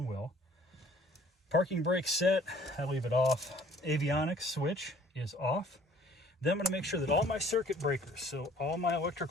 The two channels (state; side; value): normal; both; correlation 0.55